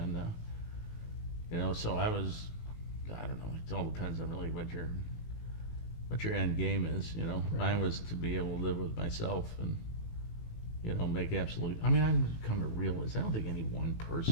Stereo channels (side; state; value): right; late; 18 ms